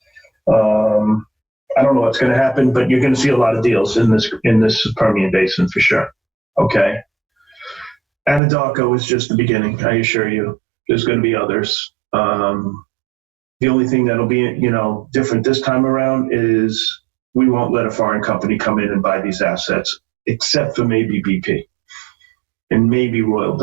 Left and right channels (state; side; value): drops out; left; at 8.4 s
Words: I don't know what's going to happen, but you're going to see a lot of deals in this Permian Basin for sure. Okay. Anadarko is just the beginning, I assure you. There's going to be others. The only thing that'll be, different this time around is we won't let a foreign company come in and buy these assets, except for maybe BP and maybe Royal